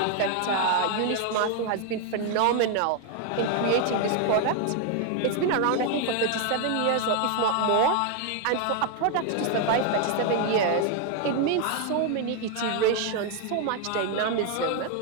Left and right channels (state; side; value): different; both; correlation 0.01